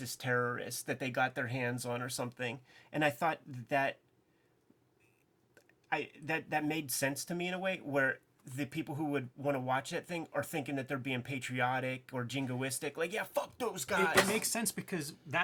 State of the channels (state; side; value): identical; both; correlation 1.00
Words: terrorist that they got their hands on or something, and I thought that made sense to me in a way, where the people who would want to watch that thing are thinking that they're being patriotic or jingoistic. Like, yeah, fuck those guys. It makes sense because